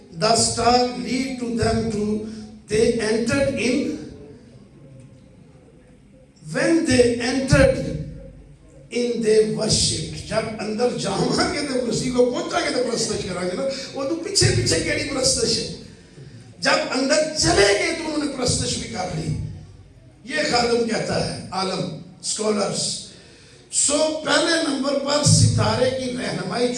the star lead to them to they entered in when they entered in they worshiped جب اندر جاؤں گے تو مسیح کو پہنچا کے تو پرستش کریں گے نا وہ تو پیچھے پیچھے کیڑی پرستش ہے جب اندر چلے گئے تو انہوں نے پرستش بھی کر لی یہ خادم کہتا ہے عالم سکولرز سو پہلے نمبر پر ستارے کی رہنمائی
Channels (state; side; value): identical; both; correlation 1.00